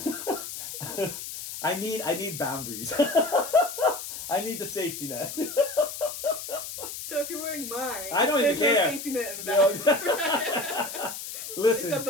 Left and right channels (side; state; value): left; noise; hiss, 8 dB below the sound